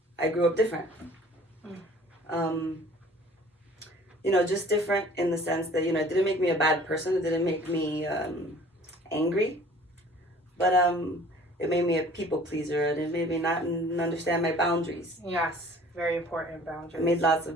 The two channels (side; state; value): both; normal; correlation 0.50